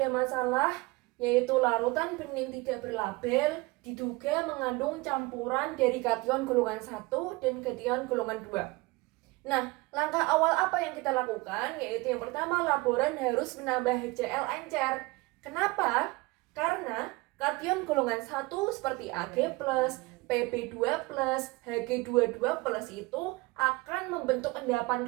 masalah yaitu larutan bening tidak berlabel diduga mengandung campuran dari kation golongan 1 dan kation golongan 2. Nah, langkah awal apa yang kita lakukan? Yaitu yang pertama, laboran harus menambah HCl encer. Kenapa? Karena kation golongan 1 seperti Ag+, Pb2+, Hg22+ itu akan membentuk endapan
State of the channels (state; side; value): quieter; left; 23.5 dB